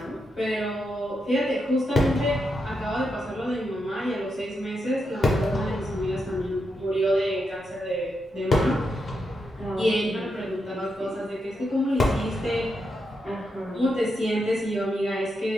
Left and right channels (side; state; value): both; normal; correlation 0.84